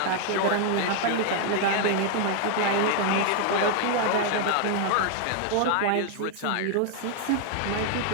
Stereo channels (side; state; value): both; different; correlation 0.00